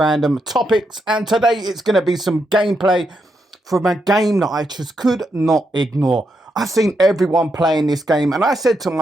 Topics. And today it's going to be some gameplay from a game that I just could not ignore. I've seen everyone playing this game, and I said to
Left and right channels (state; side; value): normal; both; correlation 0.82